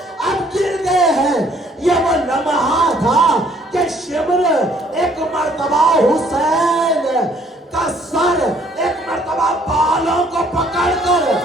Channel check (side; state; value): both; normal; correlation 0.62